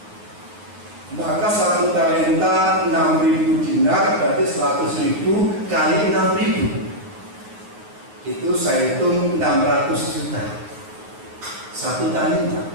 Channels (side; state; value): left; late; 9.1 ms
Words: maka 1 talenta 6.000 dinar berarti 100.000 kali 6.000. Itu saya hitung 600 juta. 1 talenta.